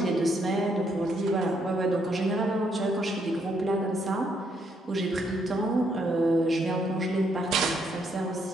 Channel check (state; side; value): normal; both; correlation 0.74